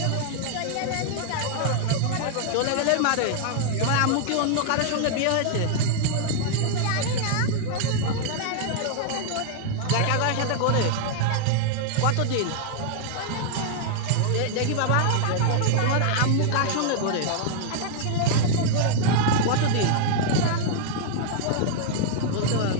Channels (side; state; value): both; different; correlation 0.00